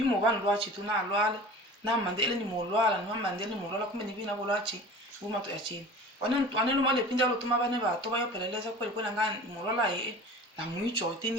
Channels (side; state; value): both; normal; correlation 0.39